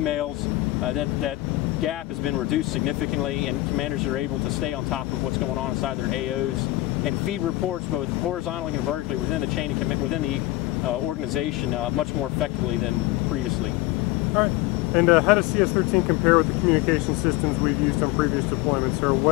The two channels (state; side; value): quieter; right; 17.8 dB